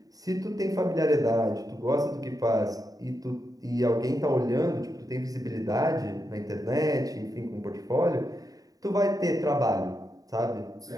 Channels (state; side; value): late; left; 0.18 ms